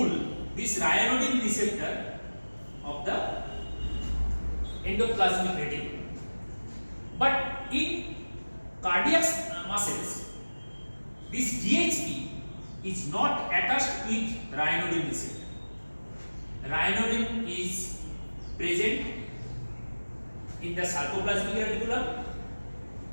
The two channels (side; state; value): both; inverted; correlation -1.00